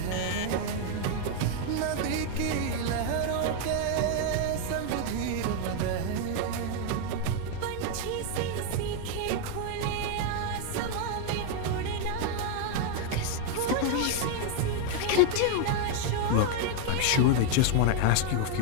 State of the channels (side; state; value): both; different; correlation 0.00